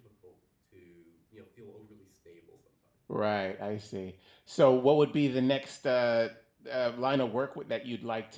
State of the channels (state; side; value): identical; both; correlation 1.00